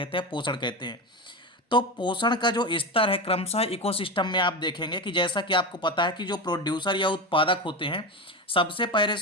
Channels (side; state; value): both; normal; correlation 0.20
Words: हैं, पोषण कहते हैं। तो पोषण का जो स्तर है क्रमशः इकोसिस्टम में आप देखेंगे कि जैसा कि आपको पता है कि जो प्रोड्यूसर या उत्पादक होते हैं, सबसे पहले